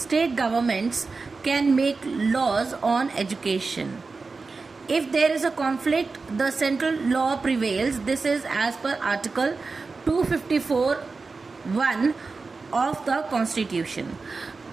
state governments can make laws on education. If there is a conflict, the central law prevails. This is as per Article 254(1) of the Constitution.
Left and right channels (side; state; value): left; quieter; 4.2 dB